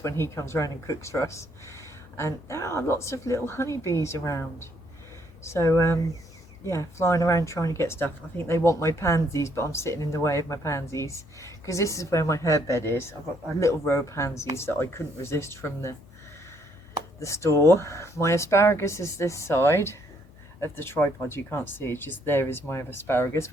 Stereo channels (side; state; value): left; noise; hum, 23 dB below the sound